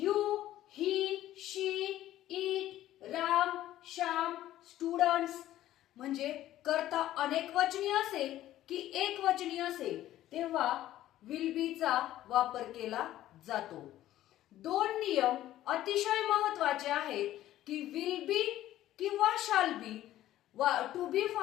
he, she, it, Ram, Shyam, students म्हणजे कर्ता अनेकवचनी असेल की एकवचनी असेल तेव्हा विल बी चा वापर केला जातो। दोन नियम अतिशय महत्त्वाचे आहेत की विल बी किंवा शाल बी टू बी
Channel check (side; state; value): right; quieter; 13.7 dB